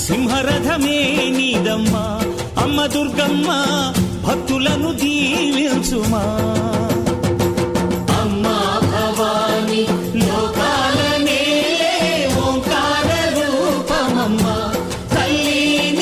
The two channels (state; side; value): identical; both; correlation 1.00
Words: సింహరథమే నీదమ్మా అమ్మ దుర్గమ్మ భక్తులను దీవించుమా అమ్మా భవాని లోకాల నేలే ఓంకార రూపమమ్మా తల్లి